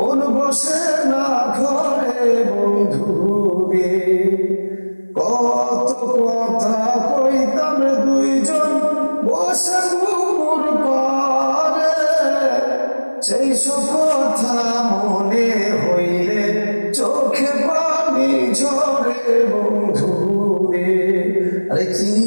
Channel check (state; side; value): inverted; both; correlation -1.00